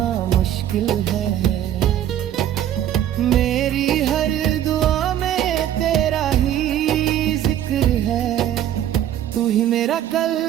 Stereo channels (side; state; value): left; quieter; 11.3 dB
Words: मुश्किल है। मेरी मेरी हर दुआ में तेरा ही जिक्र है। तू ही मेरा कल,